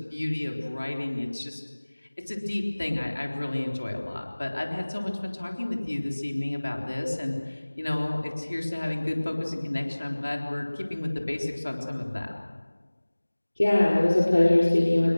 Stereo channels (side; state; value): both; inverted; correlation -1.00